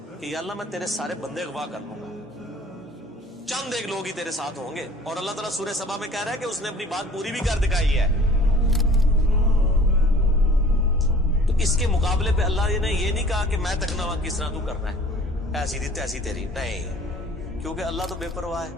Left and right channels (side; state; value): both; normal; correlation 0.50